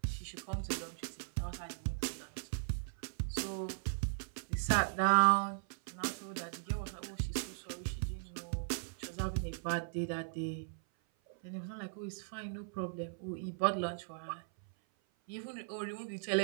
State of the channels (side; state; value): left; silent; 52 dB below the other